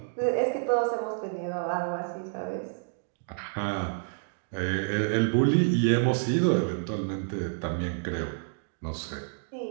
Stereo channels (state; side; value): silent; left; digital silence